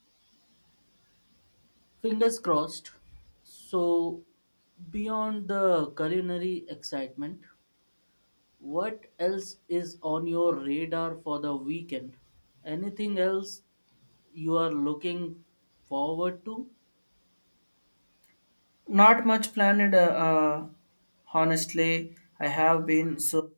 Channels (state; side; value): inverted; both; correlation -1.00